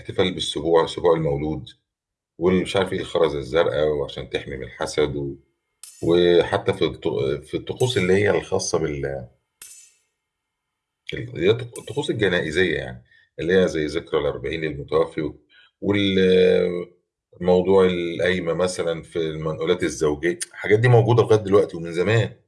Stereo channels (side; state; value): both; identical; correlation 1.00